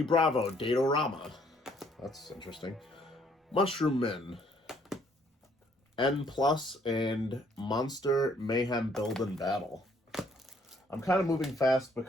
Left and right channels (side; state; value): both; normal; correlation 0.64